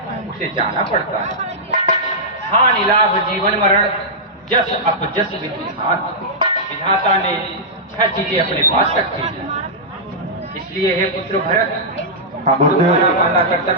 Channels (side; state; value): both; normal; correlation -0.11